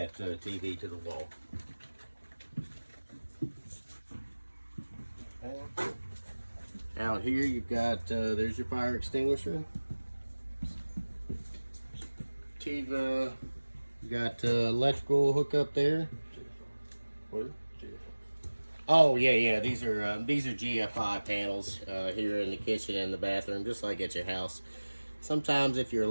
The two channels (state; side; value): inverted; both; correlation -1.00